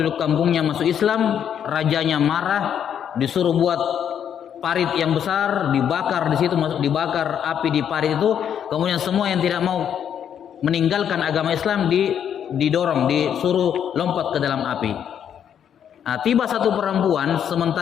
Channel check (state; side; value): quieter; right; 8.8 dB